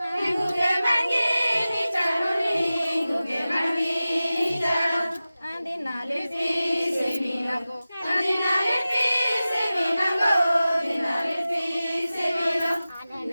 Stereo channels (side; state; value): both; inverted; correlation -0.96